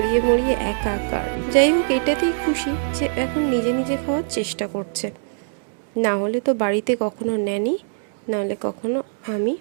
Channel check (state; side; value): silent; left; digital silence